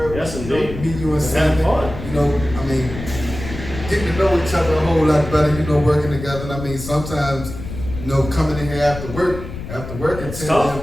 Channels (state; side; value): noise; left; rumble, 10 dB below the sound